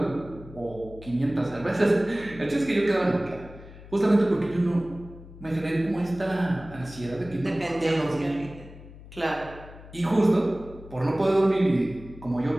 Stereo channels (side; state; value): left; noise; hum, 17 dB below the sound